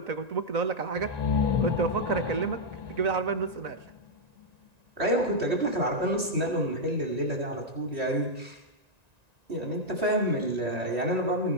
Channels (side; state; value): left; late; 1.9 ms